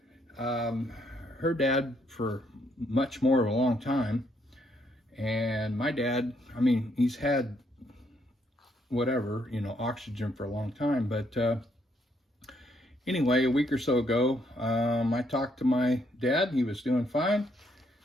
Her dad for much more of a long time, and my dad, I mean, he's had whatever, you know, oxygen for a long time, but anyway, a week or so ago, I talked to my dad. He was doing fine,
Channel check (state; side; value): normal; both; correlation 0.72